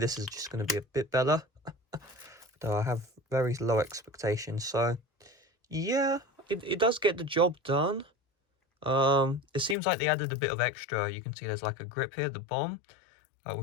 is just going to be a bit better. Though I have very low expectations. So, yeah, it does get the job done. It seems like they added a bit of extra. You can see there's like a grip here at the bottom,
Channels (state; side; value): drops out; right; at 9.8 s